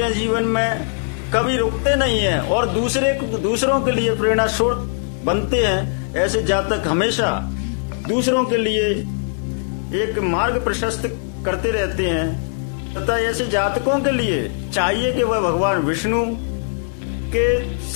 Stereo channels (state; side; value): silent; right; digital silence